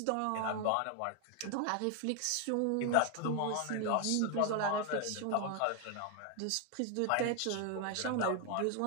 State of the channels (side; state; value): both; different; correlation 0.01